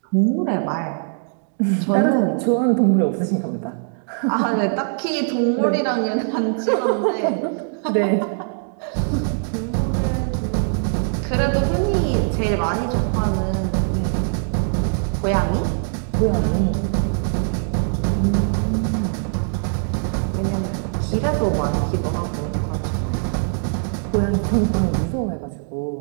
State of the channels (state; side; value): silent; left; digital silence